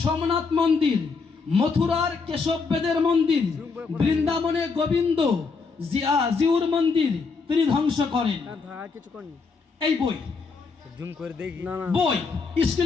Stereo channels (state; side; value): quieter; right; 4.7 dB